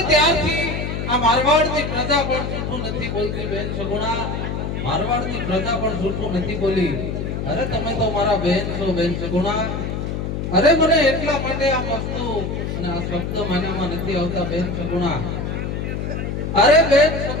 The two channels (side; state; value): left; noise; hum, 3 dB below the sound